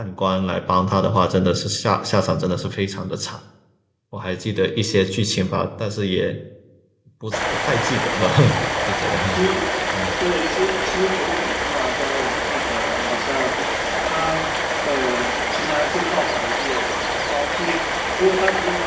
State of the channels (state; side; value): identical; both; correlation 1.00